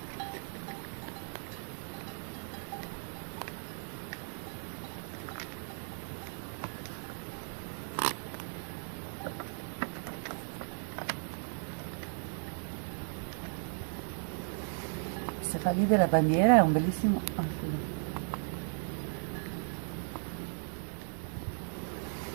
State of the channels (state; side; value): silent; left; 54 dB below the other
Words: Se fa lì della bandiera è un bellissimo...